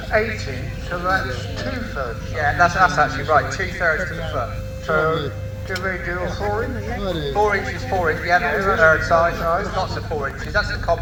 80, so that's 2/3. Yeah, that's actually right, 2/3 to the foot. So, do we do a 4-inch? 4 inches, 4 inches, yeah, that's the third size. There's lots of 4 inches, that's the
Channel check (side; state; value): both; identical; correlation 1.00